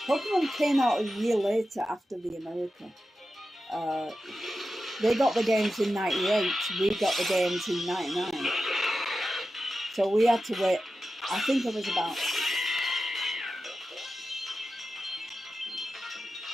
Pokemon came out a year later after the America. They got the games in 98. We got the games in 99. So we had to wait. I think it was about...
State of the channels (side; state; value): both; normal; correlation 0.92